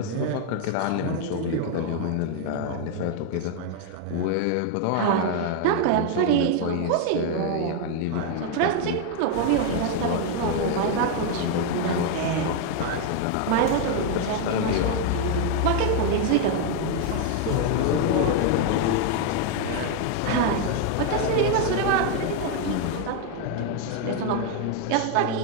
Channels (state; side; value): different; both; correlation 0.01